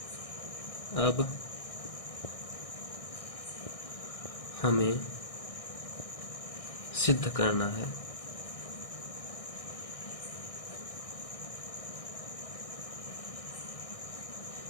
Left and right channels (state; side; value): late; right; 1.6 ms